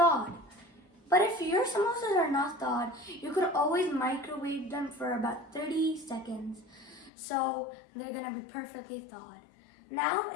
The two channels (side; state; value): right; drops out; at 7.1 s